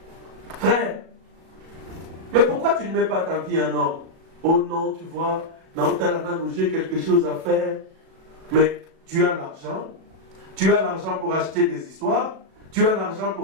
Frère, mais pourquoi tu ne mets pas ta vie en ordre? Oh non, tu vois, j'ai quelque chose à faire. Mais tu as l'argent. Tu as l'argent pour acheter des histoires. Tu as l'argent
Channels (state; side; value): late; left; 37 ms